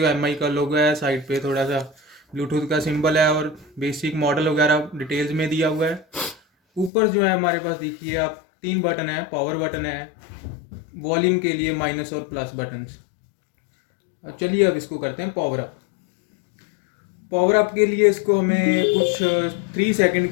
एमआई का लोगो है, साइड पे थोड़ा सा ब्लूटूथ का सिंबल है और बेसिक मॉडल वगैरह डिटेल्स में दिया हुआ है। ऊपर जो है हमारे पास देखिए आप 3 बटन है, पावर बटन है, वॉल्यूम के लिए माइनस और प्लस बटन्स। चलिए अब इसको करते हैं पावर अप। पावर अप के लिए इसको हमें कुछ 3 सेकंड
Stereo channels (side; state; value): right; drops out; at 6.9 s